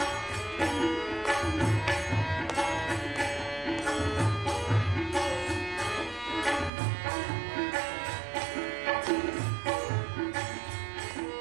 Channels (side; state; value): left; drops out; at 6.7 s